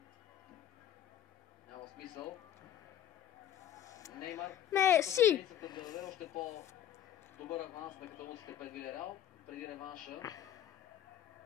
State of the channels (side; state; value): right; quieter; 10.7 dB